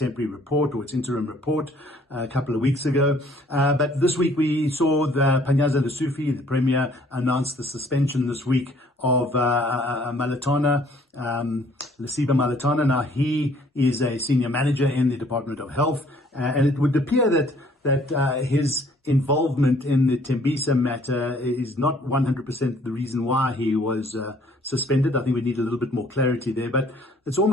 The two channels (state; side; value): normal; both; correlation 0.59